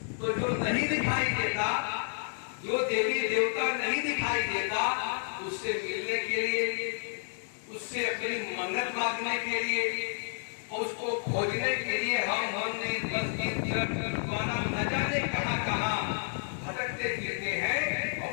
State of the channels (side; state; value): right; silent; digital silence